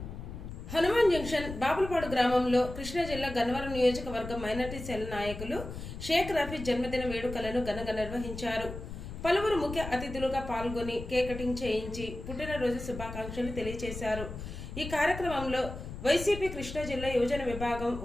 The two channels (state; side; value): noise; left; rumble, 9 dB below the sound